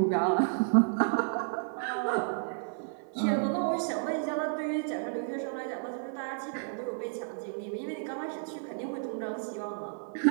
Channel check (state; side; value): silent; left; 57 dB below the other